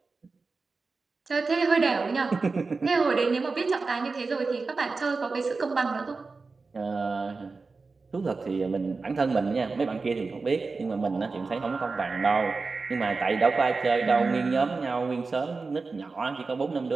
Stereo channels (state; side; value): quieter; left; 4.1 dB